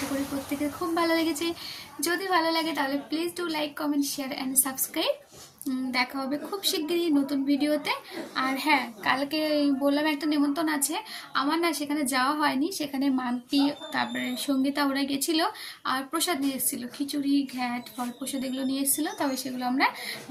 করি প্রত্যেকের খুব ভালো লেগেছে। যদি ভালো লাগে তাহলে please do like, comment, share and subscribe. দেখা হবে খুব শিগগিরই নতুন ভিডিওতে। আর হ্যাঁ, কালকে বললাম একটা নিমন্ত্রণ আছে আমার, না সেখানে যাওয়া হয়নি। সেখানে মাম্পি, তারপরে সঙ্গীতা ওরা গেছিলো, আর প্রসাদ নিয়ে এসেছিলো, খিচুড়ি, ঘ্যাট, ফল প্রসাদ এগুলো নিয়ে এসেছিলো। তবে সেগুলো আমরা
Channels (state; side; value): identical; both; correlation 1.00